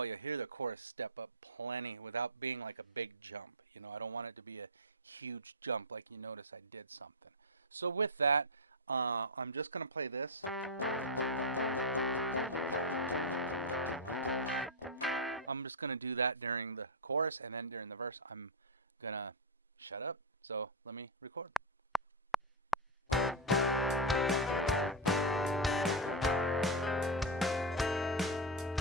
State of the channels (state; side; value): normal; both; correlation 0.00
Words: you hear the chorus step up plenty without being like a big jump. You know, I don't want it to be a huge jump like you notice I did something. So with that, I'm just going to play this. I'm just going to do that during the chorus, and then during the verse, I'm going to shut up. So let me record.